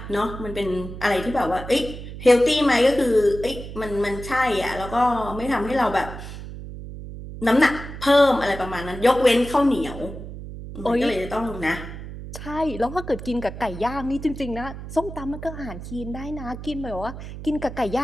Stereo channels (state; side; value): noise; right; hum, 11 dB below the sound